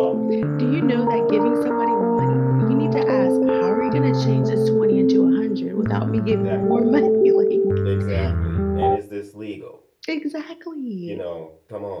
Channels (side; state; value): both; identical; correlation 1.00